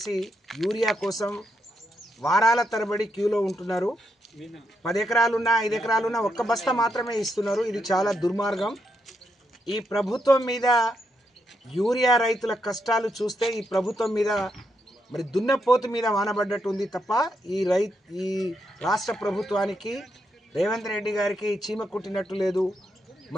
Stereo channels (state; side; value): normal; both; correlation 0.81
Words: యూరియా కోసం వారాల తరబడి క్యూలో ఉంటున్నారు. 10 ఎకరాలున్నా 5 ఎకరాలున్నా ఒక్క బస్తా మాత్రమే ఇస్తున్నారు. ఇది చాలా దుర్మార్గం. ఈ ప్రభుత్వం మీద, యూరియా రైతుల కష్టాలు చూస్తే ఈ ప్రభుత్వం మీద మరి దున్నపోతు మీద వానబడ్డట్టు ఉంది తప్ప ఈ రాష్ట్ర ప్రభుత్వానికి, రేవంత్ రెడ్డి గారికి చీమ కుట్టినట్టు లేదు.